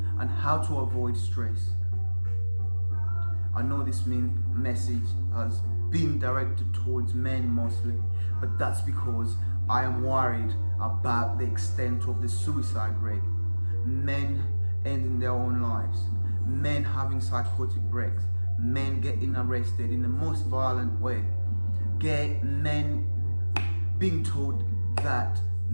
and how to avoid stress. I know this message has been directed towards men mostly, but that's because I am worried about the extent of the suicide rate. Men ending their own lives, men having psychotic breaks, men getting arrested in the most violent way, men being told that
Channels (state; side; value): inverted; both; correlation -1.00